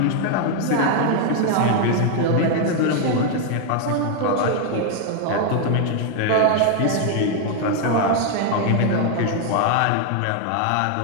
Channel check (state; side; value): different; both; correlation 0.00